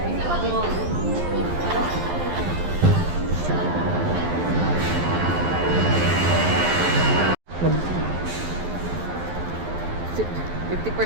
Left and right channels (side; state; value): left; late; 11 ms